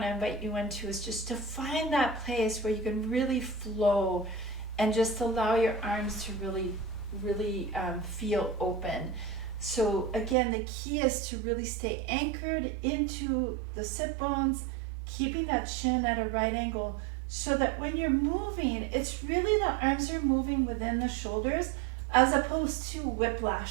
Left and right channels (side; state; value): left; drops out; at 10.4 s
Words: to invite you into is just to find that place where you can really flow and just allow your arms to really feel open. So again, the key is to really stay anchored into the sit bones, keeping that chin at a right angle so that when you're moving, it's really the arms are moving within the shoulders as opposed to